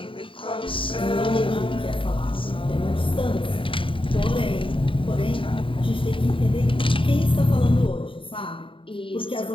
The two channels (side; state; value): right; late; 0.25 ms